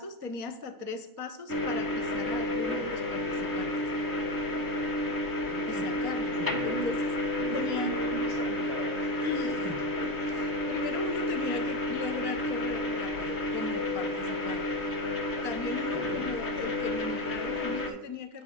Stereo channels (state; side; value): late; left; 6.4 ms